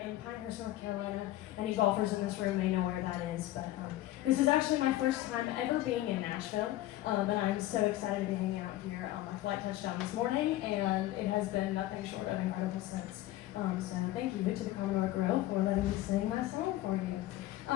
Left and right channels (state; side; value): quieter; right; 15.5 dB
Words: Pinehurst, North Carolina. Any golfers in this room may know where that is, but this is actually my first time ever being in Nashville, and I'm so excited to be hanging out here. My flight touched down this morning, and it has been nothing short of incredible since. So thank you to the Commodore Grill for letting me sing my song for you.